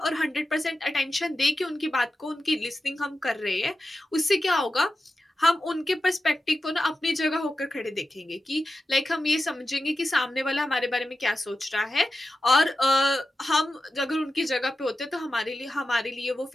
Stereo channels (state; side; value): normal; both; correlation 0.92